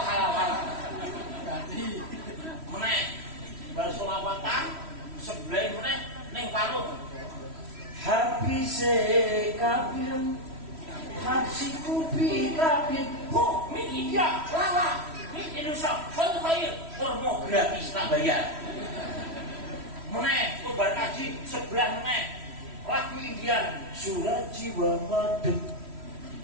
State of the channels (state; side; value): late; left; 3.1 ms